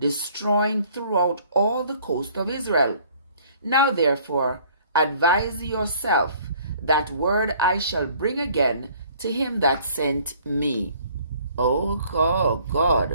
throughout all the coast of Israel. Now therefore advise yourself, that word I shall bring again to him that sent me. Oh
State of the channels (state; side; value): inverted; both; correlation -0.57